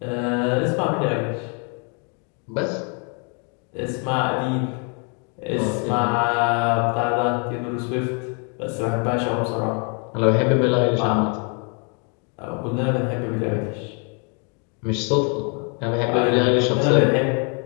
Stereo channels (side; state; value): right; quieter; 37.6 dB